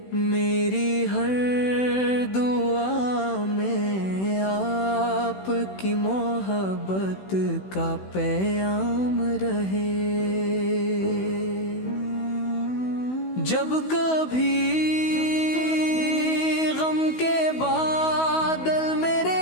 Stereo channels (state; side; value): late; right; 16 ms